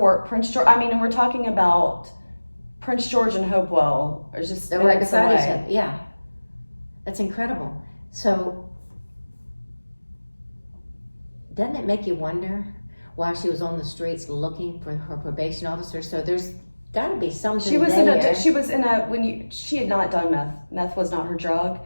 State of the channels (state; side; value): inverted; both; correlation -1.00